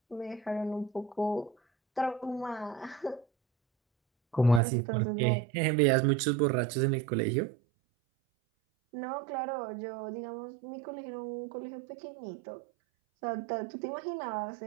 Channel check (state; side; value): drops out; left; at 4.6 s